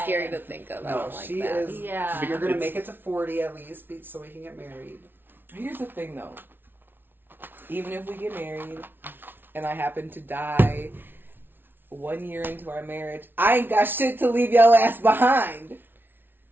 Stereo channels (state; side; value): late; left; 0.10 ms